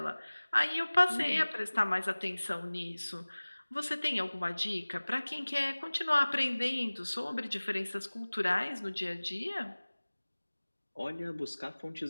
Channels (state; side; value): inverted; both; correlation -1.00